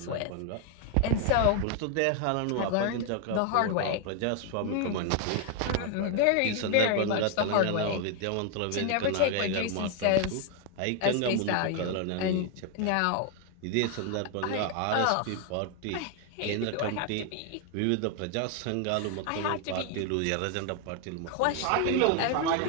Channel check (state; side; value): different; both; correlation 0.00